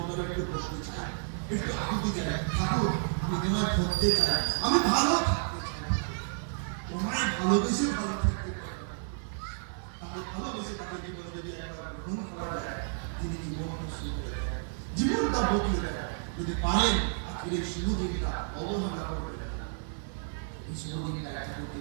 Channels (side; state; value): left; silent; 57 dB below the other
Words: একটু বসতে চাই, একটু আকুতি চাই, ঠাকুর আমি তোমায় ধরতে চাই, আমি ভালো থাকতে চাই, তোমায় ভালোবেসে ভালো থাকতে চাই। তাকে ভালোবেসে তাকে জীবনে যদি একবার গ্রহণ করা যায়, তিনি জীবনটা শুরু করে দেয়, জীবনটা বদলে দেয়। যদি পারেন আজকের এই শুভ দিনটা অবহেলা করবে, এই শুভ দিনটা ঠাকুরকে